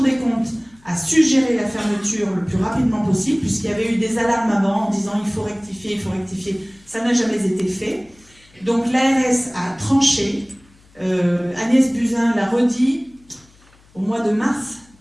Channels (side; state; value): left; noise; hum, 29 dB below the sound